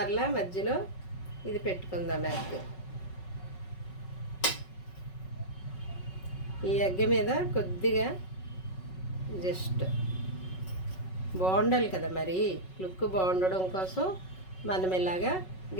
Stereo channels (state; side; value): late; right; 5.4 ms